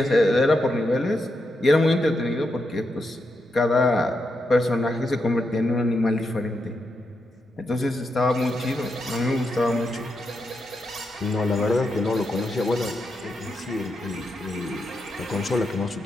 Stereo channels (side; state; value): both; normal; correlation 0.84